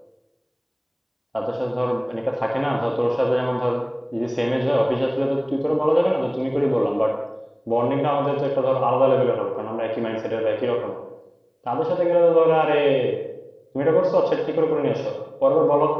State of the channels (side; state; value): both; identical; correlation 1.00